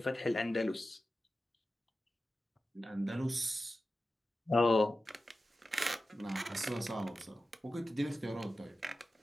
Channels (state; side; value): normal; both; correlation 0.93